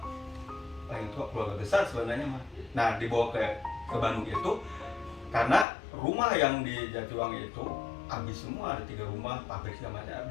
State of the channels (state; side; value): drops out; right; at 5.7 s